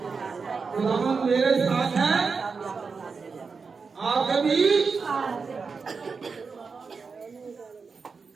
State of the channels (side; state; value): left; quieter; 5.0 dB